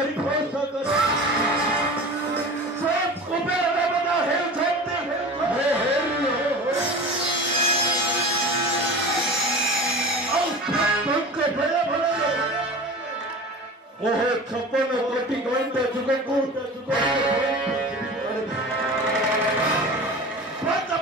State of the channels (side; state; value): both; normal; correlation 0.34